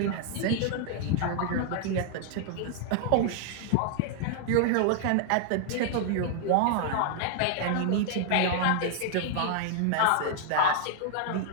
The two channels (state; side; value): different; both; correlation 0.00